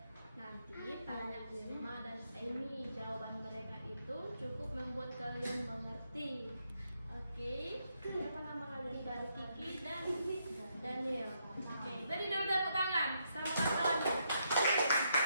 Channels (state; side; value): inverted; both; correlation -0.78